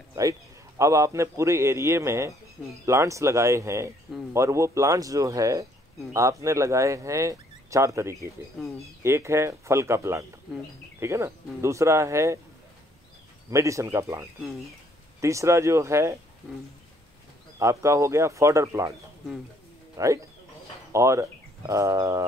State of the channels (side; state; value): both; normal; correlation 0.65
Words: right. अब आपने पूरे एरिया में प्लांट्स लगाए हैं और वो प्लांट्स जो है आपने लगाए हैं 4 तरीके के। एक है फल का प्लांट, ठीक है ना, दूसरा है मेडिसिन का प्लांट, तीसरा जो है आपका हो गया फॉडर प्लांट, राइट। और